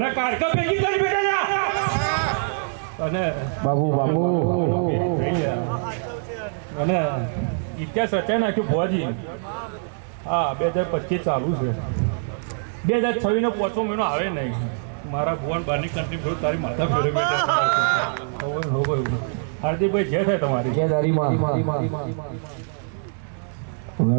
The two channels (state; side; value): silent; left; digital silence